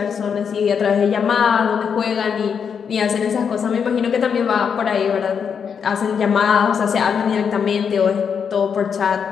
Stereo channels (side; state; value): right; quieter; 6.8 dB